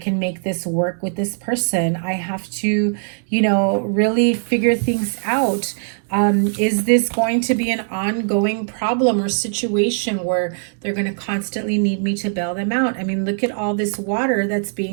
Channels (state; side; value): silent; left; digital silence